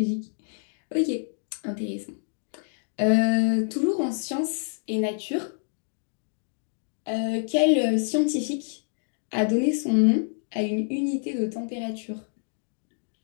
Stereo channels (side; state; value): right; silent; digital silence